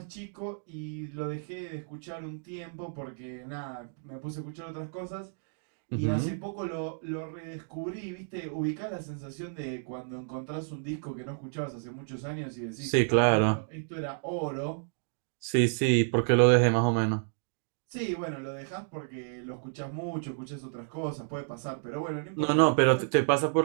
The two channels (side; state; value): left; silent; digital silence